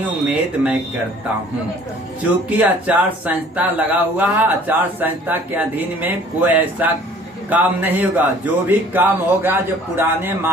उम्मीद मैं करता हूँ, चूँकि आचार संहिता लगा हुआ है, आचार संहिता के अधीन में कोई ऐसा काम नहीं होगा। जो भी काम होगा जो पुराने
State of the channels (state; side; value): normal; both; correlation 0.53